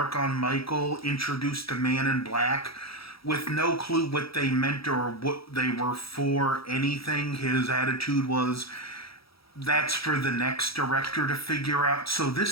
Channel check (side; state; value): right; late; 0.76 ms